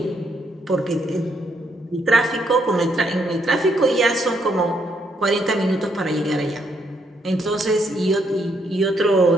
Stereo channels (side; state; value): both; normal; correlation 0.74